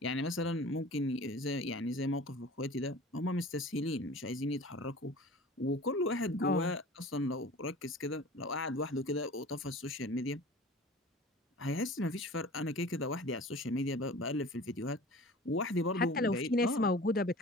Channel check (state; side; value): normal; both; correlation 0.41